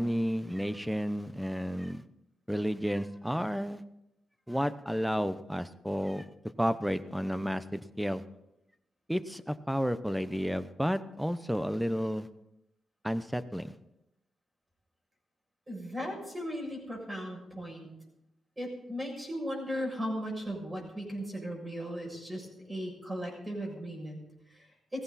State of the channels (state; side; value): normal; both; correlation 0.96